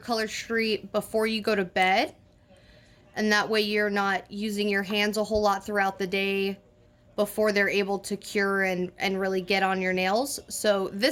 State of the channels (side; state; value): both; identical; correlation 1.00